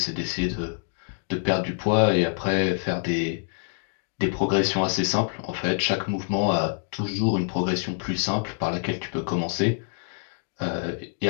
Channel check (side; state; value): right; silent; 57 dB below the other